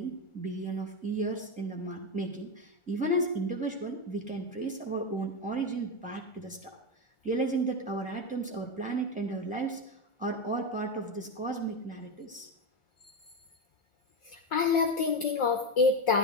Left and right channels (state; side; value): late; right; 1.4 ms